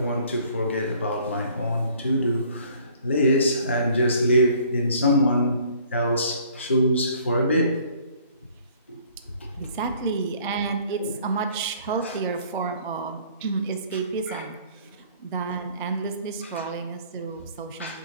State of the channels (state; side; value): inverted; both; correlation -0.56